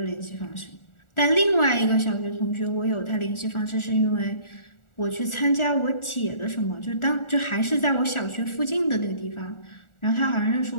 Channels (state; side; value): late; right; 1.4 ms